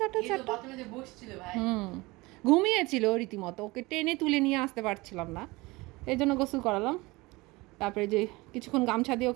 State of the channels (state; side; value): quieter; left; 22.5 dB